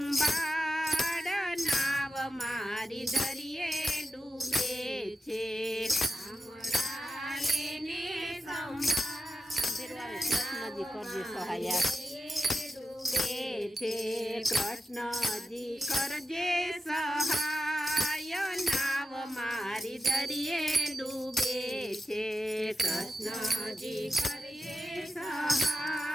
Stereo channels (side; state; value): both; normal; correlation 0.91